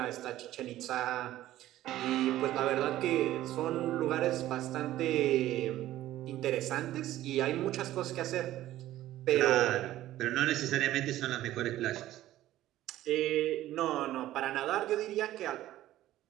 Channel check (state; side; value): quieter; left; 14.3 dB